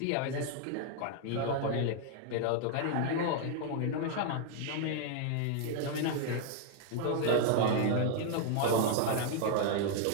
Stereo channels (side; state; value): both; different; correlation 0.00